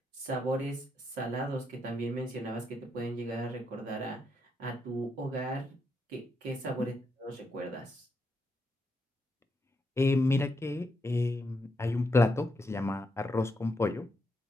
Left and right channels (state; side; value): normal; both; correlation 0.81